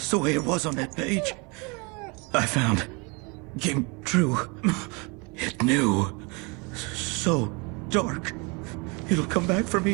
the way it was on that page. I found. Came true. It knew. So dark. It'll come back for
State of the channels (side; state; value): left; quieter; 30.2 dB